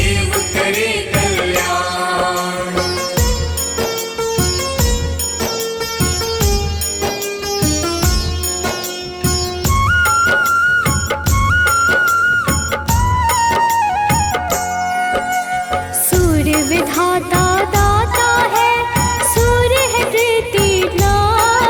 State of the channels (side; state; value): both; identical; correlation 1.00